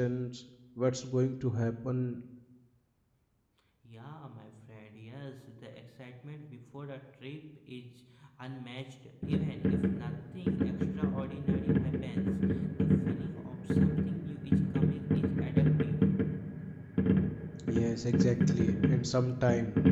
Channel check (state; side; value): identical; both; correlation 1.00